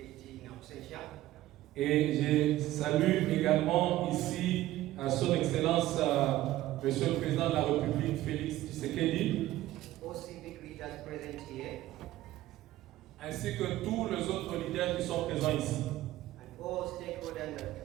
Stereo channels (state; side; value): quieter; left; 15.3 dB